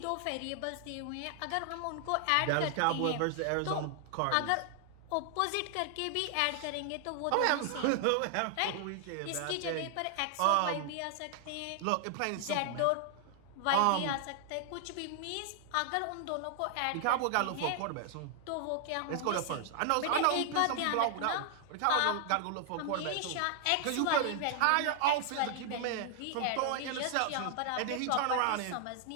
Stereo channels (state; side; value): different; both; correlation 0.00